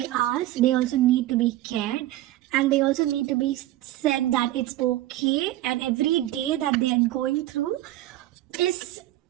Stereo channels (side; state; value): left; quieter; 15.0 dB